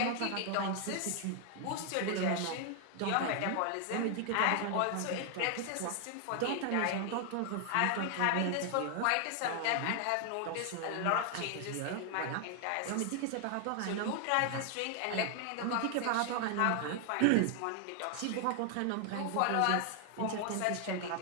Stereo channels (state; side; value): different; both; correlation 0.00